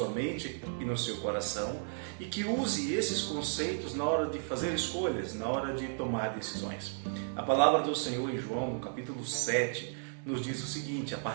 mente e no seu coração e que use esses conceitos na hora de fazer escolhas, na hora de tomar decisões. A palavra do Senhor em João, no capítulo 7, nos diz o seguinte, a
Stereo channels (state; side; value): silent; left; digital silence